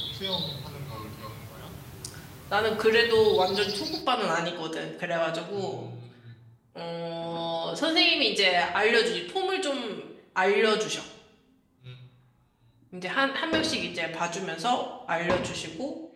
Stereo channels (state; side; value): identical; both; correlation 1.00